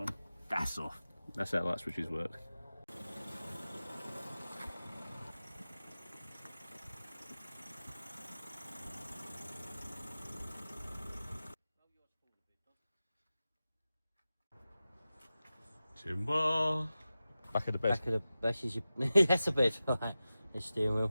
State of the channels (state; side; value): inverted; both; correlation -0.95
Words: That's off. That's how light switches work. Timber. Back of the bed. Back of the back is your that's a bed, right? The steering